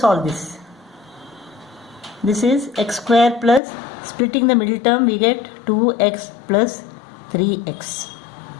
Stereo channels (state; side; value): drops out; right; at 3.6 s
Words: this. This is x squared plus, splitting the middle term we get 2x plus 3x